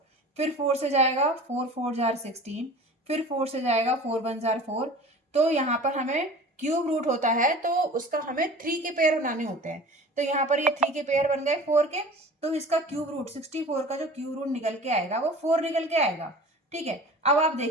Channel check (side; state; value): both; normal; correlation 0.40